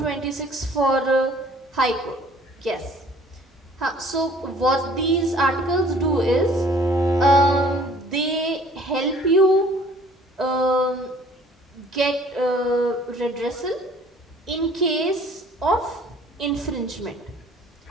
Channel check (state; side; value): normal; both; correlation 0.54